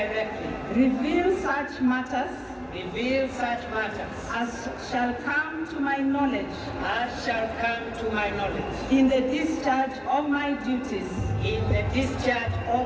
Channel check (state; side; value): identical; both; correlation 1.00